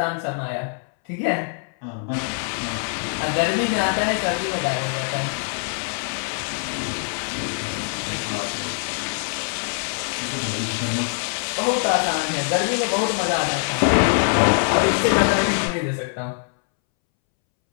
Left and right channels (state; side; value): silent; right; 63 dB below the other